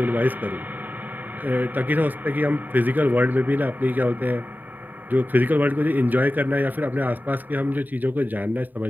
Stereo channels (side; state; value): left; late; 0.087 ms